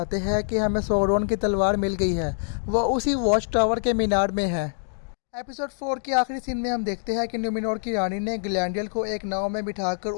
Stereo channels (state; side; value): silent; right; digital silence